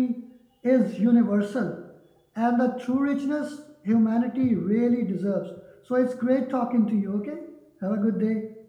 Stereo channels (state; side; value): identical; both; correlation 1.00